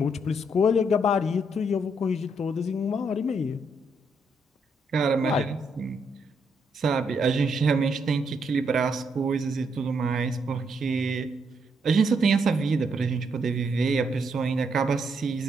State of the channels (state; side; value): normal; both; correlation 0.76